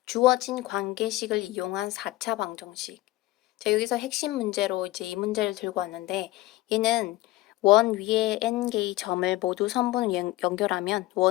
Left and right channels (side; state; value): right; quieter; 17.7 dB